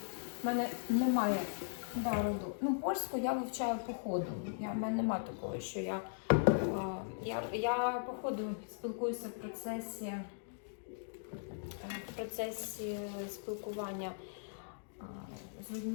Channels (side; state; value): right; silent; digital silence